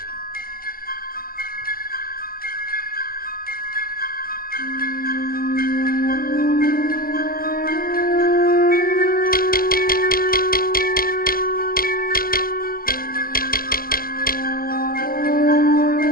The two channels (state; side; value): late; right; 0.42 ms